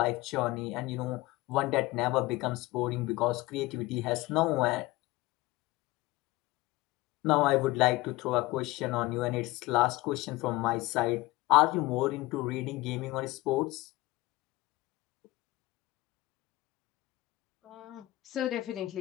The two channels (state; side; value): quieter; right; 19.7 dB